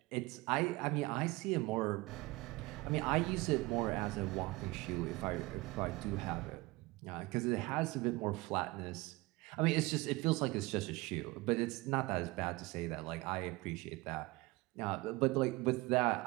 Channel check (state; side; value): quieter; left; 22.3 dB